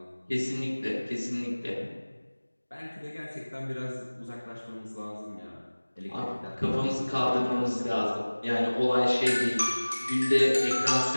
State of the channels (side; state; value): both; inverted; correlation -1.00